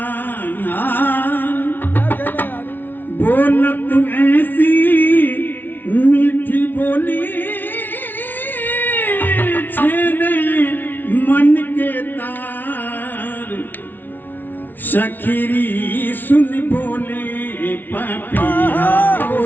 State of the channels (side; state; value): right; late; 0.090 ms